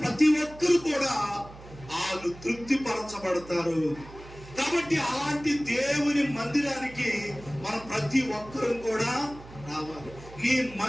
ప్రతి ఒక్కరు కూడా వాళ్ళు తృప్తి పరచబడతారు. కాబట్టి అలాంటి దేవుని మందిరానికి మనం ప్రతి ఒక్కరూ కూడా రావాలి. నీ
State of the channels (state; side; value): noise; right; hum, 18 dB below the sound